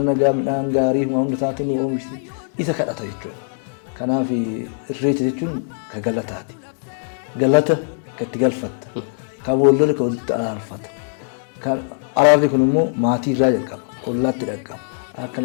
nagaa midhaan gaarii hunda isaatti nu oomishti isa kadhata jechuudha. Kanaaf irreecha jechuun ka galataati. Galata kan itti galfatta. Kan boollola kan walitti araarfata. Araarri kun immoo maatii irraa jalqaba. Ollaatti dhaqqaba. Akka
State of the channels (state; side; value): silent; right; digital silence